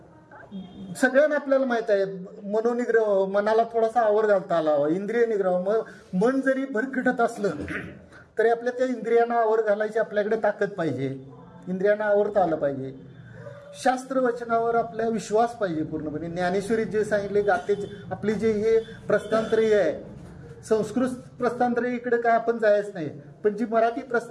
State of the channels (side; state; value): both; identical; correlation 1.00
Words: सगळ्यांना आपल्याला माहित आहे मनोनिग्रह, मनाला थोडासा आवर घालता आला, इंद्रिय निग्रह. मन जरी भरकटत असलं तरी आपल्या त्या इंद्रियांना आवर घालायची आपल्याकडे ताकद पाहिजे, इंद्रियांना आवरता आलं पाहिजे. शास्त्र वचनावर आपला विश्वास पाहिजे पूर्णपणे. ज्ञानेश्वरीत जे सांगितले गाते, आपली जे हे प्रस्थानत्रयी आहे, संस्कृत प्रस्थानत्रयी इकडे काय आपण जायच नाही, पण जी मराठी